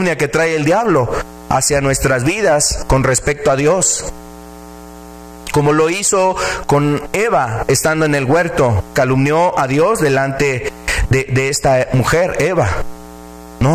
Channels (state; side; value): identical; both; correlation 1.00